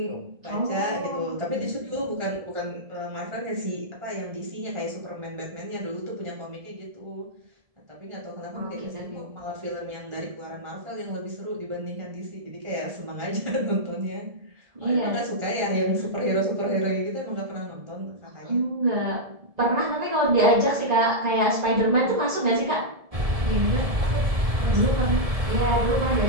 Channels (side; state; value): left; late; 1.7 ms